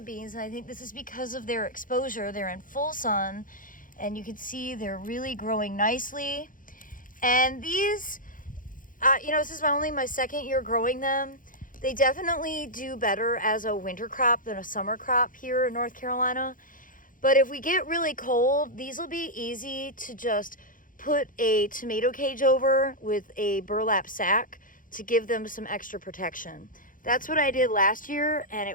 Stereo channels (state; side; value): late; right; 0.39 ms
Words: and I think this is because of their exposure. They're in full sun, and you can see they're really growing nicely. And these, you know, this is only my second year growing them. They definitely do better as a winter crop than a summer crop here in North Carolina. But if we get really cold, these will be easy to just put a tomato cage over with a burlap sack to give them some extra protection. That's what I did last year, and